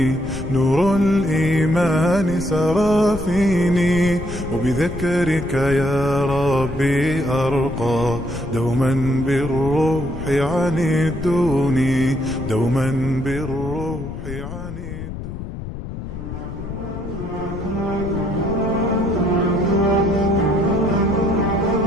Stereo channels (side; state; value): left; noise; rumble, 8 dB below the sound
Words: نور الإيمان سرى فيني، وبذكرك يا ربي أرقى، دوما بالروح عن الدون، دوما بالروح عن الدون.